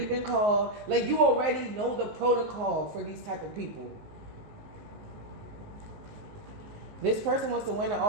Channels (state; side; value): late; left; 19 ms